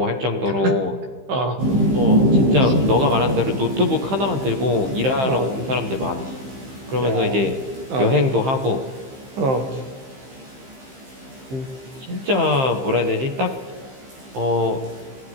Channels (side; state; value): left; late; 15 ms